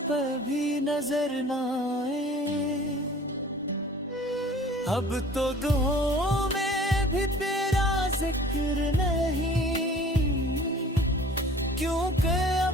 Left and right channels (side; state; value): both; normal; correlation 0.48